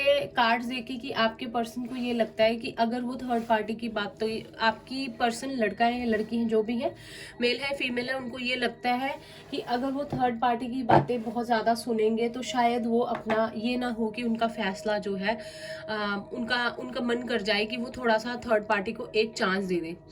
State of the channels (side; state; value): both; identical; correlation 1.00